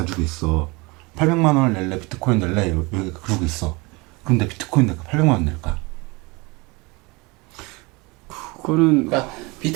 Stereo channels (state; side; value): quieter; left; 25.8 dB